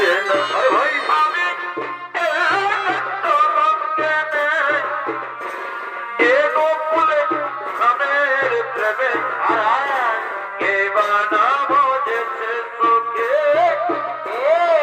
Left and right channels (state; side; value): identical; both; correlation 1.00